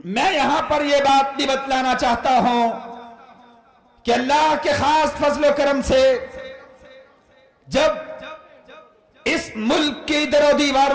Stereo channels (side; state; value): both; identical; correlation 1.00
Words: یہاں پر یہ بات بھی بتلانا چاہتا ہوں کہ اللہ کے خاص فضل و کرم سے جب اس ملک کی در و